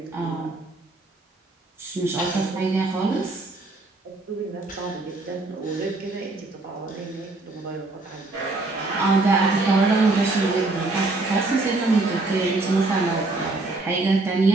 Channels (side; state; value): left; quieter; 3.2 dB